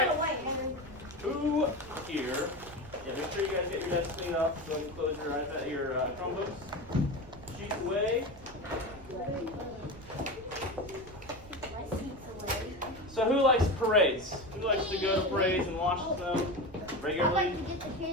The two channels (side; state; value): right; noise; rumble, 19 dB below the sound